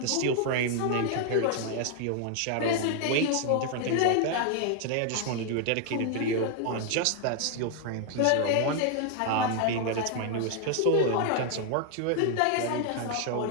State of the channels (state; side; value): different; both; correlation 0.00